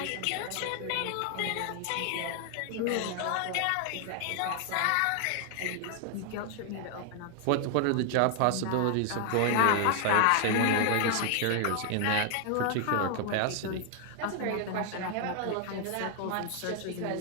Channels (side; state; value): both; different; correlation 0.00